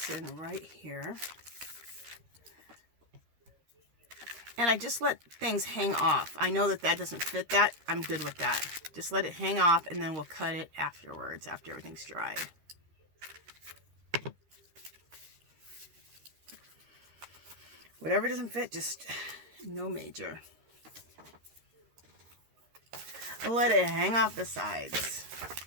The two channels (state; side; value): late; left; 13 ms